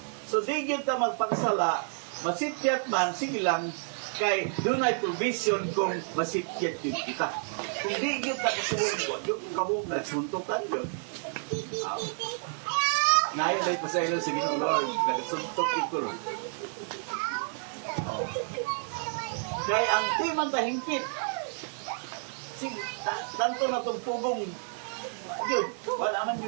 So di gyud ta magpakasala, masipyat man, sige lang, kay dunay provision kung masipyat yun kita. Kung di gyud ta kasubong, yung kabog na suntukan yun. Ngayon ay pasaylo sa Ginoo Lord, nagsuntok yung kulong. Kaya ang timang tahingpit, tanto na itong pugong, yun, wala man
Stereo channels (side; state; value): left; silent; 58 dB below the other